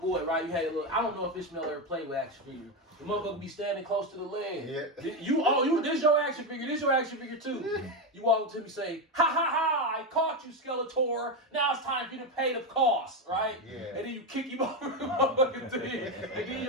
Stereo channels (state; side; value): normal; both; correlation 0.11